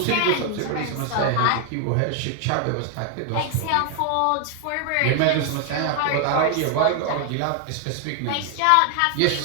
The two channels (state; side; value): different; both; correlation 0.01